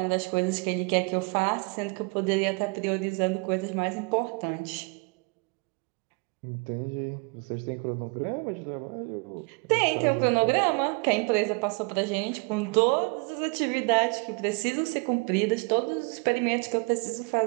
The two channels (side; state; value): left; quieter; 31.4 dB